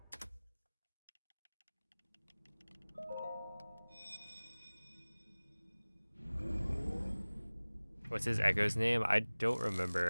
What's his echo's name? I don't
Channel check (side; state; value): both; inverted; correlation -1.00